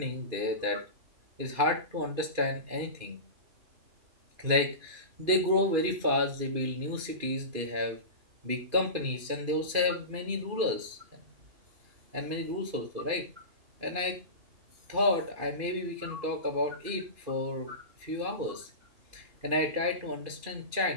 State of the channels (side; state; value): left; late; 2.5 ms